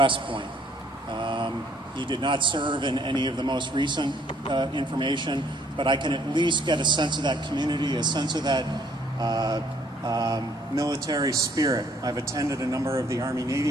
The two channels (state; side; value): normal; both; correlation 0.64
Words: Point. He did not serve in any of the most recent information, but I can at least get a sense of that community, a sense of that military spirit. I've attended a number of the